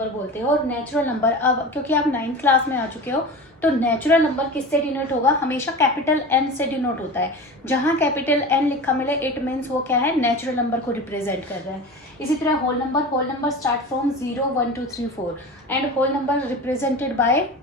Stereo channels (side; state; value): both; normal; correlation 0.32